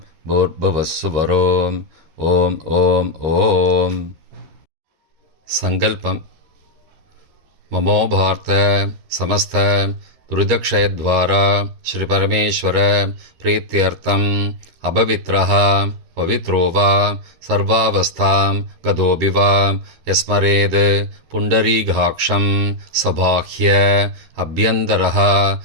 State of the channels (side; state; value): left; late; 13 ms